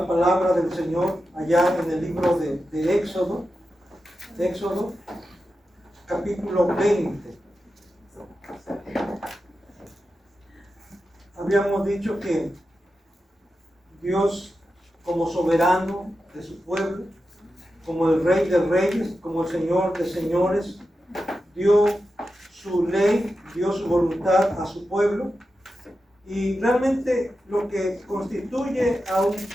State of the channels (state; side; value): normal; both; correlation 0.91